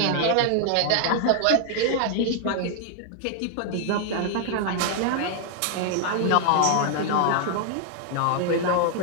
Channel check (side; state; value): both; different; correlation 0.00